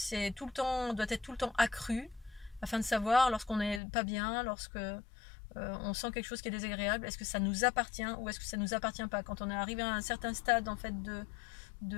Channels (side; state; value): right; drops out; at 3.8 s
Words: doit être tout le temps accrue, afin de savoir lorsqu'on n'est pas bien, lorsque on sent quelque chose qui est désagréable, est-ce que ça nous appartient ou est-ce que ça nous appartient pas. Quand on est arrivé à un certain stade en fait